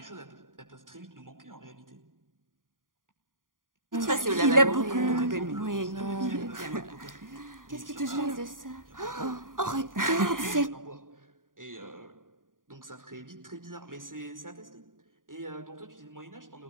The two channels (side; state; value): left; late; 0.90 ms